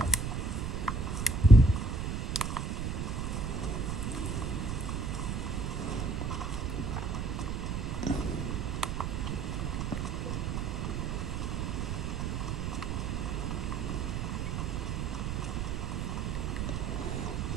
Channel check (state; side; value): noise; right; rumble, 1 dB below the sound